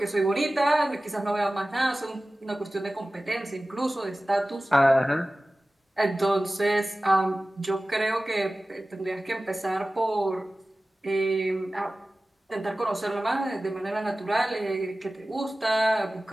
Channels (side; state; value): both; normal; correlation 0.97